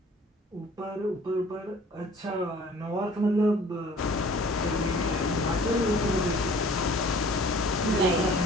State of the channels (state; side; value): normal; both; correlation 0.51